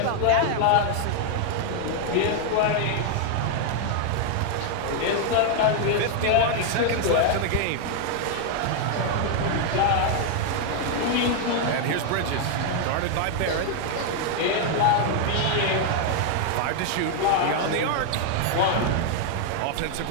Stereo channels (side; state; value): both; different; correlation 0.00